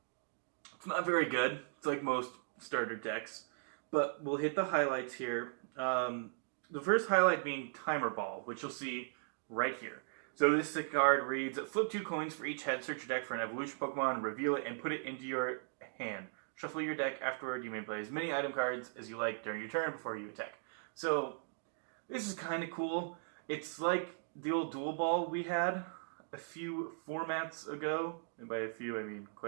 very good. It's like most starter decks. But we'll hit the highlights here. The first highlight being Timer Ball, which you'll see right here. So this card reads, flip 2 coins for each head, search your deck for an evolution Pokemon, reveal it, and put it into your hand. Shuffle your deck afterward. You may play as many item cards as you like during your turn before you attack. So, this is kind of cool. It's like the old Dual Ball we had a few formats ago. And by a few, I mean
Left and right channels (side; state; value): left; silent; digital silence